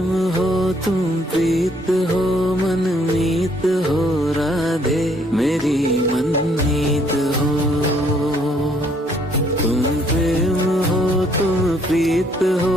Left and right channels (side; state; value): both; normal; correlation 0.66